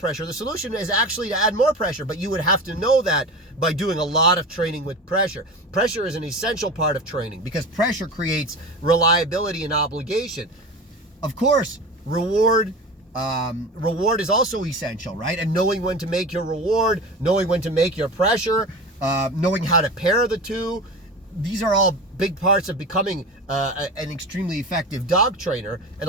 The solution is actually to add more pressure, but you would have to know that by doing a lot of training with pressure. Pressure is an essential part of training because pressure creates reliability and obligation. Of course, reward is also essential, right? And knowing when to make your reward, knowing when to make your pressure, knowing how to pair the two. These are all big parts of becoming an extremely effective dog trainer, and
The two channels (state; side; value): normal; both; correlation 0.30